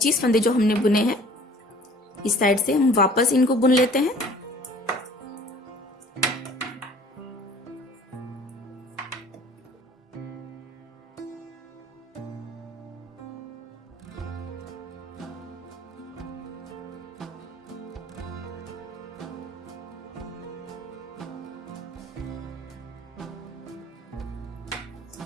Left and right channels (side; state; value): both; normal; correlation 0.50